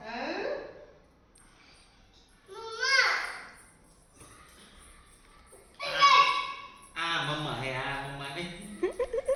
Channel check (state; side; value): identical; both; correlation 1.00